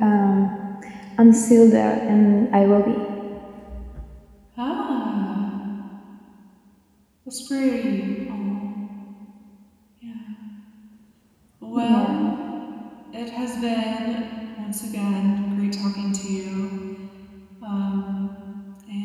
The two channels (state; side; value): identical; both; correlation 1.00